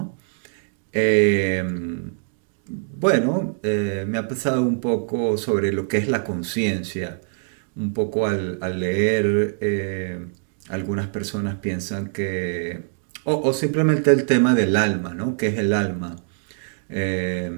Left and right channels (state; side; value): silent; left; digital silence